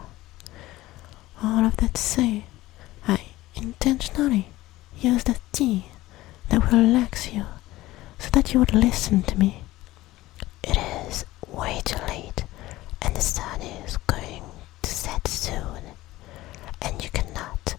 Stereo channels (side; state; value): right; quieter; 17.3 dB